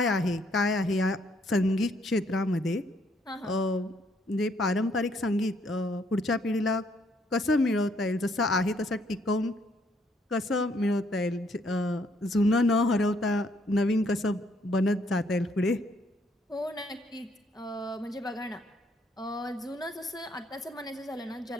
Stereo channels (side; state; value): both; normal; correlation 0.69